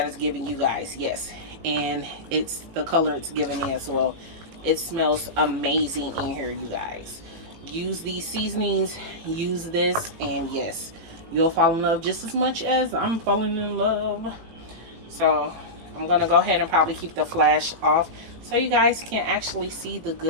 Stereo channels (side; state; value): left; late; 18 ms